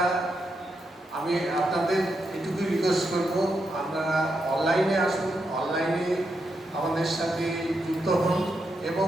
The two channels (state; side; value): normal; both; correlation 0.83